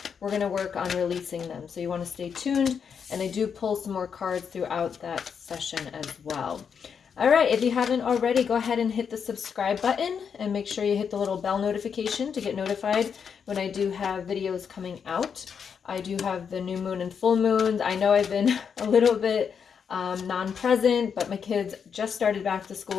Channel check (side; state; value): right; quieter; 6.8 dB